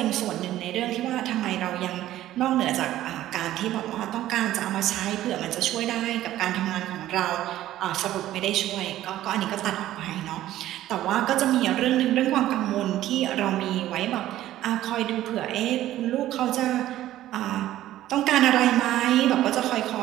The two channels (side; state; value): left; quieter; 13.8 dB